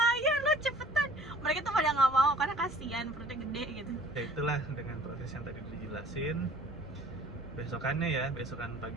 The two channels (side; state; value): both; normal; correlation 0.51